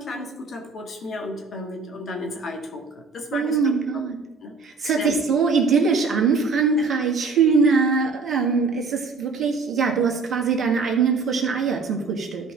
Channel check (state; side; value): quieter; left; 4.4 dB